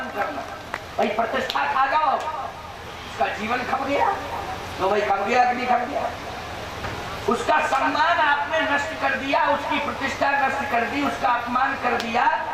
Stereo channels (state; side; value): identical; both; correlation 1.00